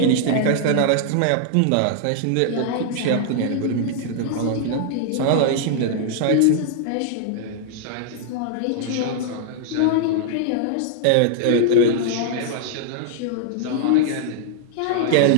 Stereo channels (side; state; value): both; different; correlation -0.01